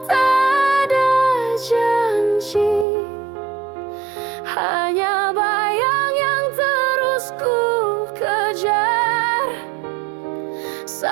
tak ada janji, hanya bayang yang terus ku kejar.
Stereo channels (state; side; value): drops out; left; at 2.9 s